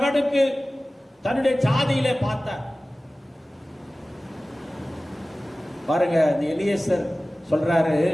தன்னுடைய ஜாதியிலே பார்த்தார். பாருங்க, இந்த எலியேசர் சொல்றாரு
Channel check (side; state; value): both; normal; correlation 0.97